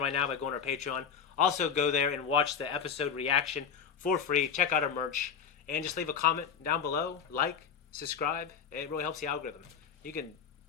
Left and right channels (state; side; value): quieter; right; 7.1 dB